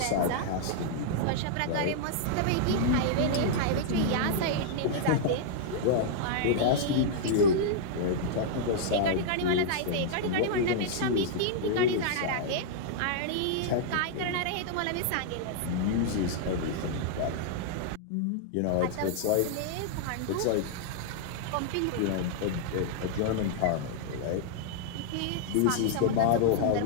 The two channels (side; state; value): both; different; correlation -0.01